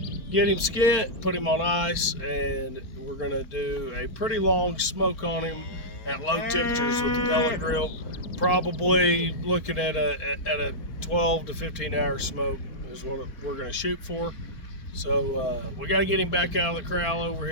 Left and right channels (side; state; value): right; late; 4.4 ms